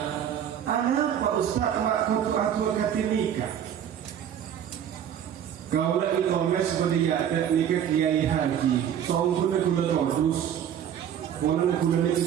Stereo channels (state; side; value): quieter; left; 9.5 dB